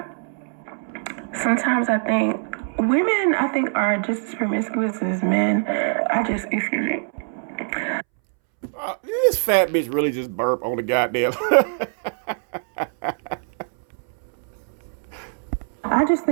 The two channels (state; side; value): silent; left; 63 dB below the other